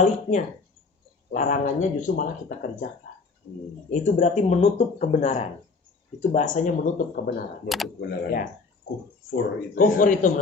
larangannya justru malah kita kerjakan. Itu berarti menutup kebenaran. Itu bahasanya menutup kebenaran. Menutup kebenaran. Ya. Kufur itu. Kufur itu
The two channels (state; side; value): quieter; right; 4.3 dB